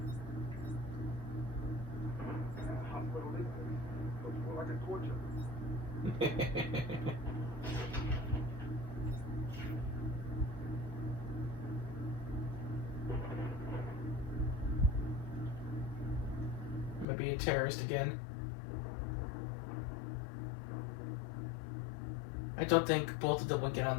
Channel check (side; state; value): right; drops out; at 17.1 s